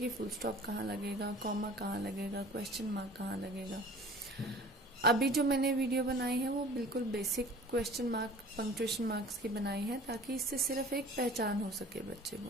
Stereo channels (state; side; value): normal; both; correlation 0.45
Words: फुल स्टॉप कहाँ लगेगा, कॉमा कहाँ लगेगा, क्वेश्चन मार्क कहाँ लगेगा। अभी जो मैंने वीडियो बनाई है वो बिल्कुल basic question mark punctuation marks की बनाई है, ताकि इससे सिर्फ एक पहचान हो सके बच्चे